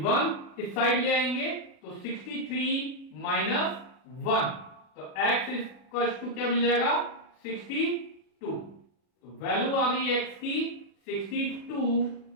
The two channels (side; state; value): right; late; 40 ms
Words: 1 इस साइड ले आएंगे तो 63 माइनस 1, तो x इक्वल टू क्या मिल जाएगा 62, तो वैल्यू आ गई x की 62